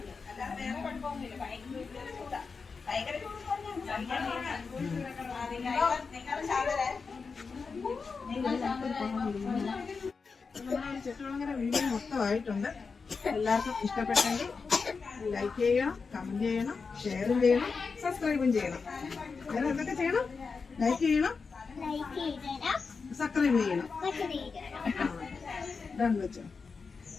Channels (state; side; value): quieter; right; 4.9 dB